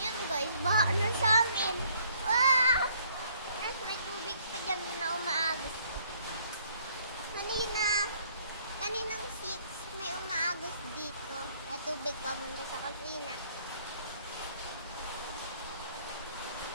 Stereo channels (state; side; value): inverted; both; correlation -0.63